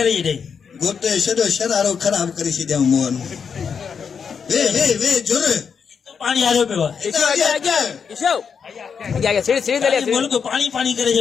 दे गोटे छडो शरारो खराब करी सी देव मोहन वे जोर पानी आ रहे पे ईशो आगे सीढ़ी ले लिया बोल को पानी पानी करे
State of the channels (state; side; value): quieter; right; 6.5 dB